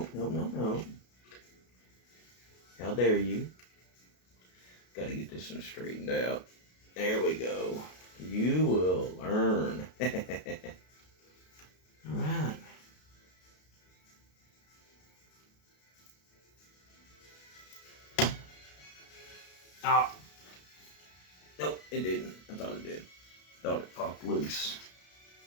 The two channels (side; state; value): right; late; 33 ms